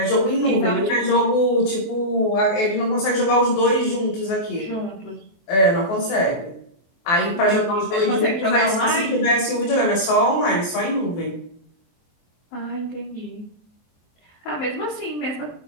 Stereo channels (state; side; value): late; right; 23 ms